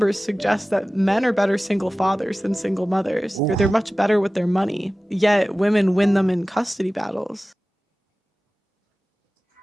suggest that men are better single fathers than single mothers. They're much better with their money. Yet women win them in custody battles.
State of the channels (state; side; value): normal; both; correlation 0.97